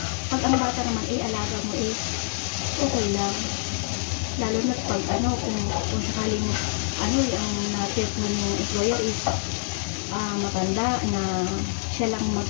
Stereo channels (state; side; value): silent; right; digital silence